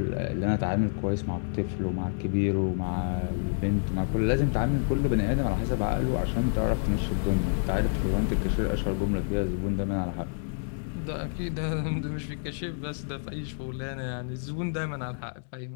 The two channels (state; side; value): silent; right; digital silence